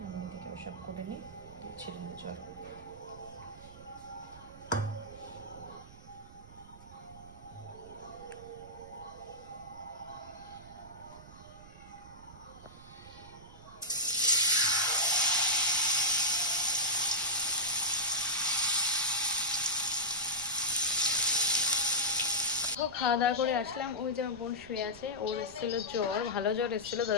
আমি এদিকে ওসব করে নিই, ছেড়ে নিই। চলো খাওয়া দাওয়া করে আসলাম। ওই যে আমার বোন শুয়ে আছে, ওর এসেছিলো জ্বর, ভালো জ্বর এসেছিলো,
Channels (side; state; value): right; noise; rumble, 19 dB below the sound